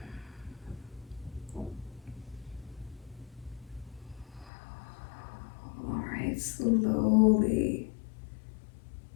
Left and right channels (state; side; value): drops out; right; at 4.5 s